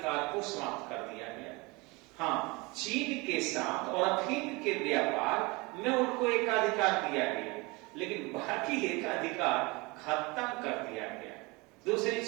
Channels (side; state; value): left; quieter; 25.5 dB